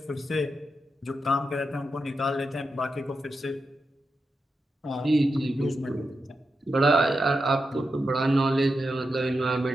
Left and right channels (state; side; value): normal; both; correlation 0.88